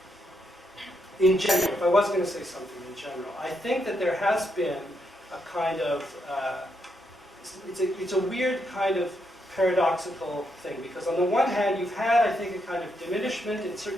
in general, if I was going to say something in general, I think that there has been a kind of it's a weird kind of paradoxical thing, because on the one hand you've had, I think, a kind of diminishment in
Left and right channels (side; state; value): both; normal; correlation 0.79